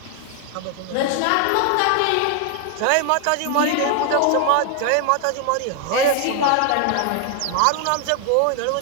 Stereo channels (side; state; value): both; different; correlation 0.00